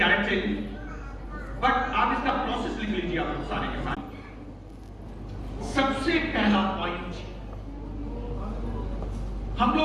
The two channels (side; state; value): both; identical; correlation 1.00